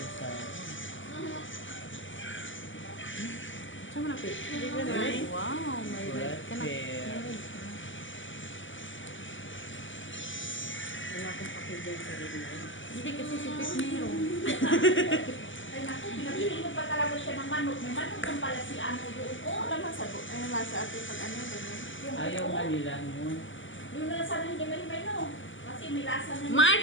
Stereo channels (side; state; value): right; late; 0.56 ms